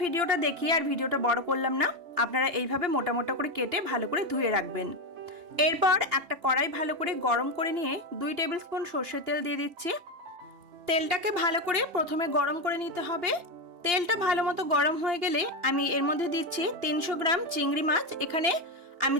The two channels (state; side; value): late; left; 2.8 ms